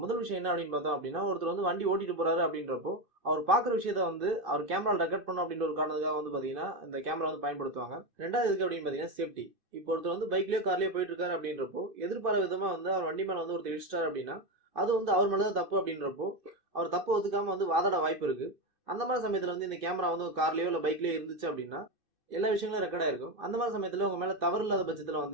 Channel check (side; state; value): left; late; 2.6 ms